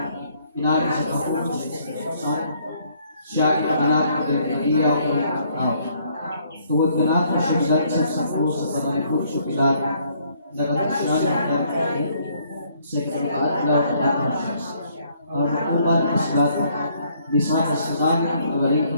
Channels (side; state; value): both; inverted; correlation -0.66